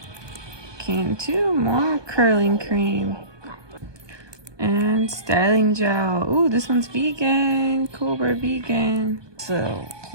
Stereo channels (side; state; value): left; late; 1.2 ms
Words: Cantu more curling cream. And styling gel. Ooh, this one's vegan. Cobra vegan. So,